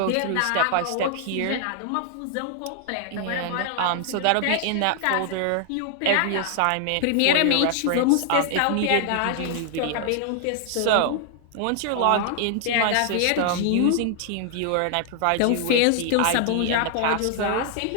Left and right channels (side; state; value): both; different; correlation 0.00